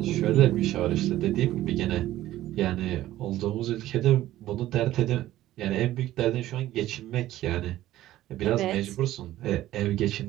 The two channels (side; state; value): left; quieter; 14.6 dB